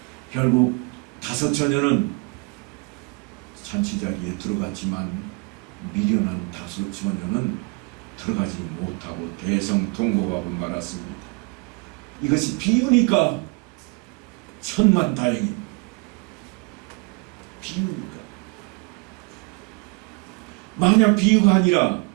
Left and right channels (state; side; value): quieter; left; 30.0 dB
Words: 결국 5 처녀는 잔치 자리에 들어갔지만 미련한 5 처녀는 들어가지 못하고 대성통곡하고 말았습니다. 이것이 비유니까 천만다행입니다. 비유니까. 만약 비유가 아니라